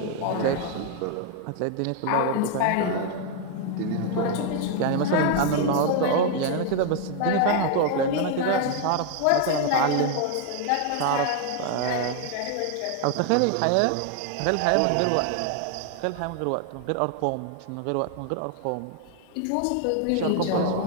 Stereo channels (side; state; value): both; different; correlation 0.00